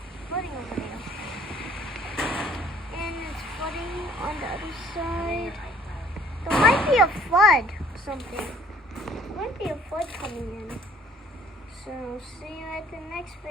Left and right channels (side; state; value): both; normal; correlation 0.57